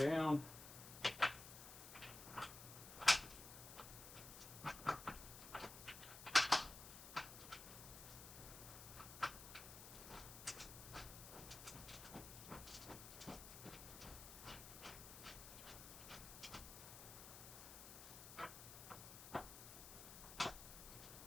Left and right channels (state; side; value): noise; left; hiss, 11 dB below the sound